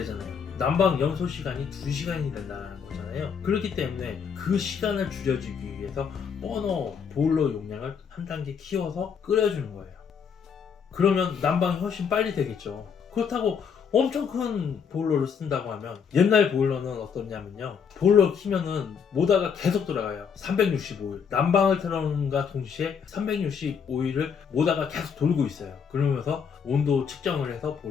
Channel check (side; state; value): right; quieter; 6.7 dB